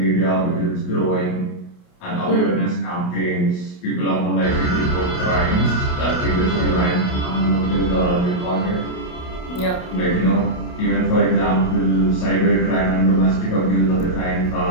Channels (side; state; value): right; late; 28 ms